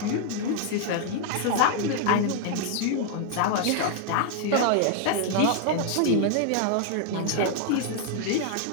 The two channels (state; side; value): different; both; correlation 0.00